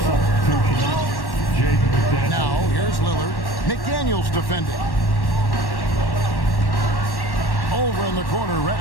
substitution. Jaden McDaniels. Now, here's Lillard. McDaniels defending. Over in the corner,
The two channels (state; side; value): late; right; 1.1 ms